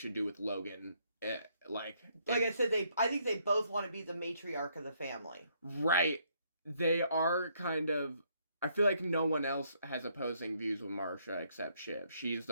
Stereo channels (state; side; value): inverted; both; correlation -0.70